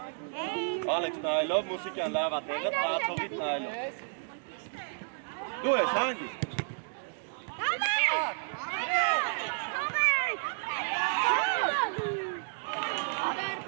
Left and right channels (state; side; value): silent; left; digital silence